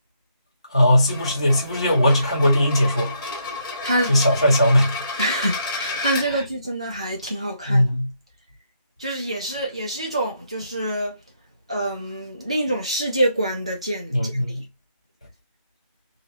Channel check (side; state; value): both; inverted; correlation -0.75